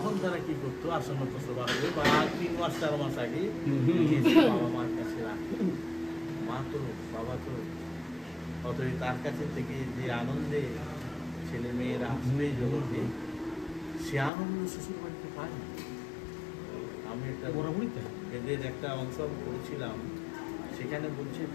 তারা কি করতো, আসন্ন প্রসব হবে বা 3 মাস 4 মাস আগে বাবা মার কাছে রাখতো। মা তো বাবা তো অতই তার কাছে থেকে যে আনন্দে ছেলে মেয়েরা আসবে জগতে, সে আনন্দ শ্বশুর বাড়িতে পায় না। আমি একটা এদের একটা অংশ করেছিলাম, সেখানে বলছে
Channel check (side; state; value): right; drops out; at 14.3 s